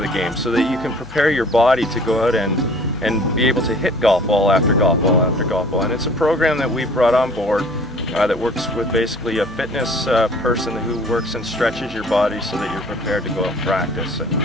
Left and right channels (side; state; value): left; noise; hum, 19 dB below the sound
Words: game so that you can prepare your body to go out and be able to hit golf ball after golf ball after golf ball. And it's a program that we've brought on board that works with basically a fitness person who works and stretches your body so that you're prepared to go out and practice.